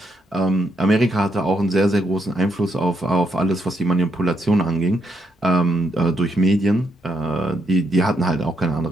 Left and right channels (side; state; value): both; normal; correlation 0.77